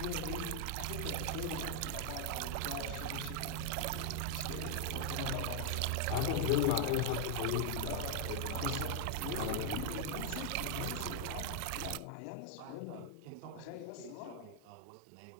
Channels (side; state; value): both; different; correlation 0.00